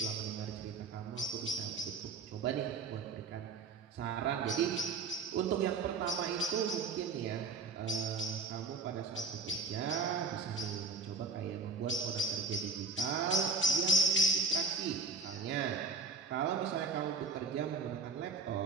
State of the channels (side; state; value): left; quieter; 4.2 dB